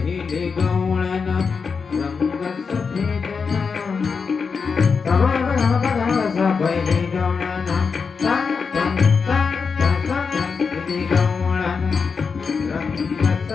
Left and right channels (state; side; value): quieter; right; 5.4 dB